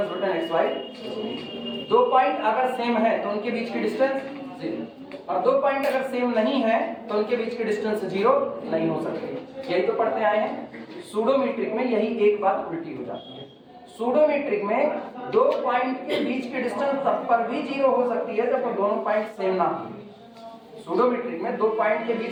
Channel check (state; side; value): identical; both; correlation 1.00